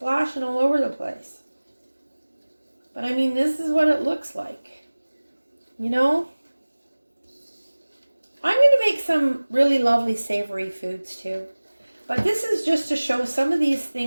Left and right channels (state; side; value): inverted; both; correlation -1.00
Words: all over the place. But I mean, this is what it looks like. You know? I'm going to make some really lovely savory foods too. But this is just to show some of these